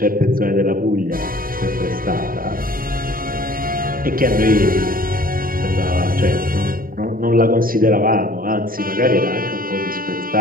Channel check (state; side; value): late; left; 0.41 ms